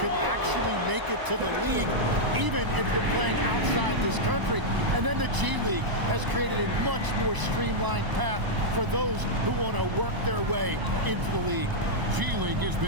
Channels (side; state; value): left; late; 1.0 ms